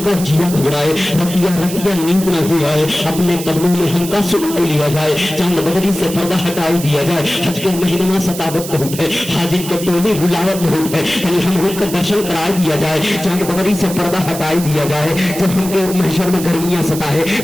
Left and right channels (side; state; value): right; noise; hiss, 10 dB below the sound